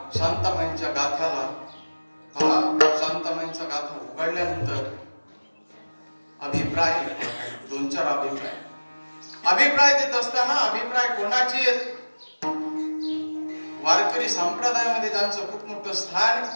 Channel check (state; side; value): inverted; both; correlation -1.00